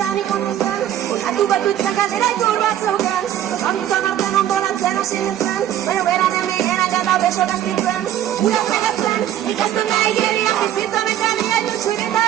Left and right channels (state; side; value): quieter; left; 11.6 dB